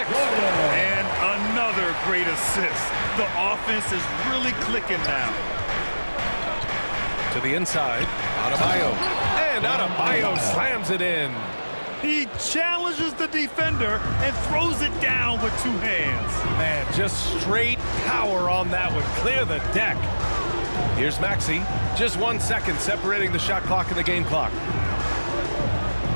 And another great assist. The offense is really clicking now. To the inside. Adebayo. And Adebayo slams it in. He challenges the defender and throws it down with 2 hands. Man, just straight power on that one. Clear the deck. Here's Maxey. Just 1 second separating the shot clock and the game clock.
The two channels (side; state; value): both; inverted; correlation -1.00